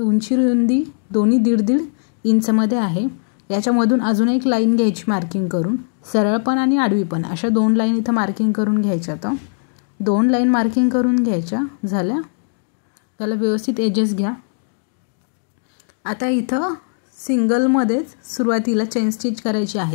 रुंदी दोन्ही 1.5 इंचमध्ये आहे। याच्यामधून अजून एक लाईन घ्यायची मार्किंग करून, सरळ पण आणि आडवी पण अशा दोन लाईन इथं मार्किंग करून घ्यायच्या। तर दोन लाईन मार्किंग करून घ्यायच्या झाल्या, त्याला व्यवस्थित एजेस घ्या। आता इथं सिंगलमध्येच सुरुवातीला चेन स्टिच करायची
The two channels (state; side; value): silent; right; digital silence